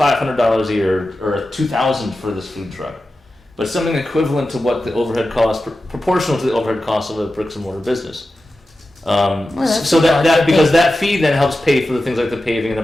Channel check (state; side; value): normal; both; correlation 0.93